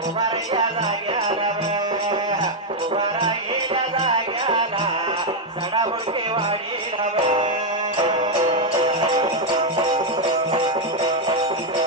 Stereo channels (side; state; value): both; normal; correlation 0.02